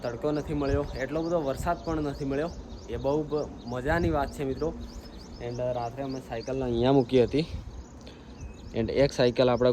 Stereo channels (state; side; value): identical; both; correlation 1.00